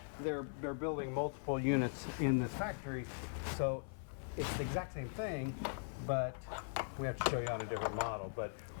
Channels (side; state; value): right; silent; 51 dB below the other